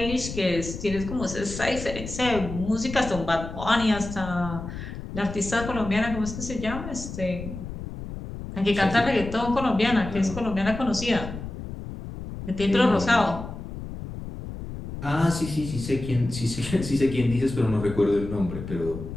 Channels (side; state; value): left; noise; rumble, 9 dB below the sound